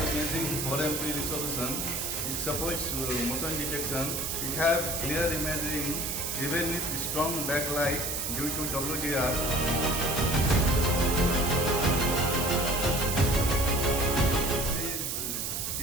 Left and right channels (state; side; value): noise; right; hiss, 2 dB below the sound